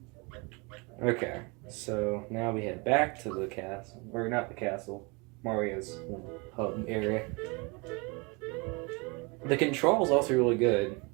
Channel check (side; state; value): left; quieter; 29.1 dB